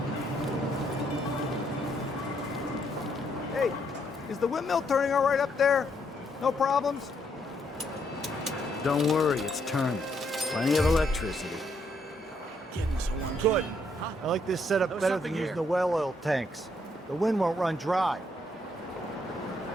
Hey, is the windmill turning all right up there? No problems? Don't worry, it's turning. Plenty of electricity. Good. I like this setup better than using the well oil tanks. The wind won't run dry.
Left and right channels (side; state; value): both; normal; correlation 0.73